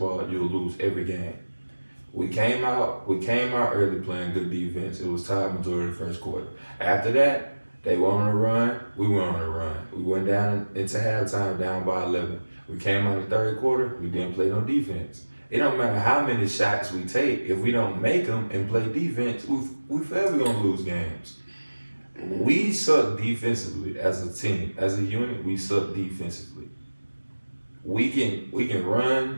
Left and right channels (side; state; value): both; inverted; correlation -1.00